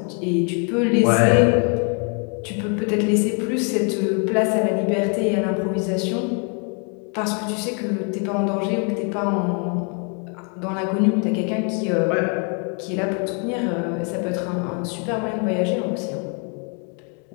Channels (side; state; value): right; quieter; 37.8 dB